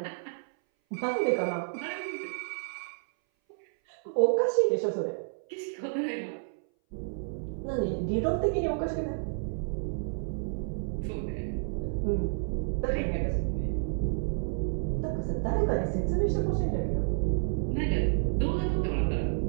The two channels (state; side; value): silent; left; 58 dB below the other